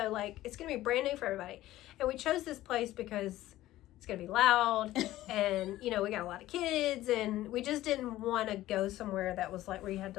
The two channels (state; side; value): quieter; right; 15.3 dB